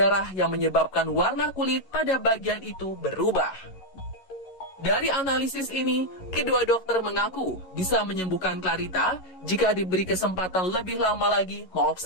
yang menyebabkan warna kulit pada bagian itu berubah. Dari analisis ini, kedua dokter mengaku bisa menyembuhkan Clarita jika diberi kesempatan lebih lama lagi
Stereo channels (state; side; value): late; right; 11 ms